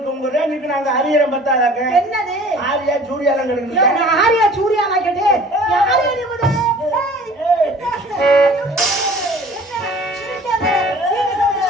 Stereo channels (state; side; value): normal; both; correlation 0.47